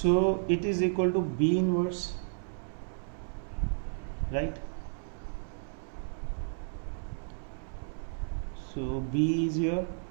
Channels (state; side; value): silent; left; 56 dB below the other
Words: it is equal to b inverse, right? So b is your